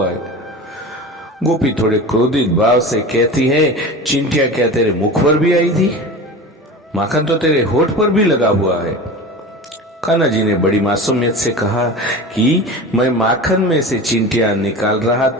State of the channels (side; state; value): both; normal; correlation 0.32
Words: है। गोपी थोड़े क्रोधित भाव से कहती है, चिंटियां क्या तेरे मुख पर भी आई थी? माखन तो तेरे होठ पर भी लगा हुआ है। कान्हा जी ने बड़ी मासूमियत से कहा कि मैं माखन में से चिंटियां निकाल रहा